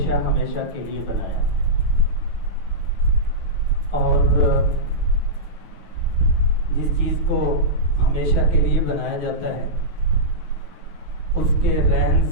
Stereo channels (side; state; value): left; late; 9.3 ms